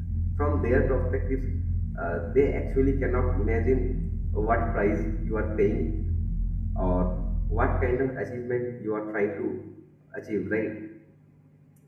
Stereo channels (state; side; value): identical; both; correlation 1.00